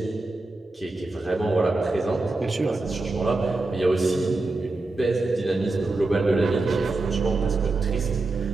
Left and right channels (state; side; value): quieter; left; 3.2 dB